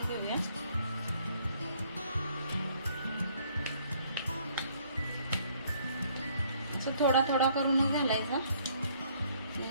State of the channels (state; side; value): inverted; both; correlation -0.64